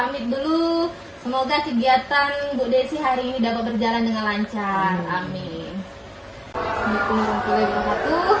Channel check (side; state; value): both; identical; correlation 1.00